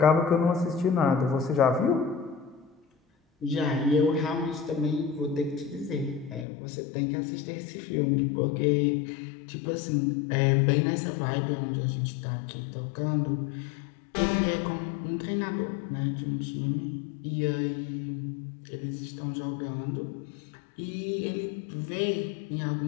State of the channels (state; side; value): drops out; right; at 6.5 s